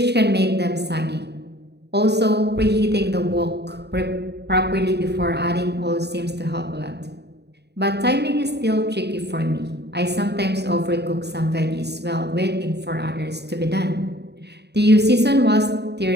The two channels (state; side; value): late; left; 0.49 ms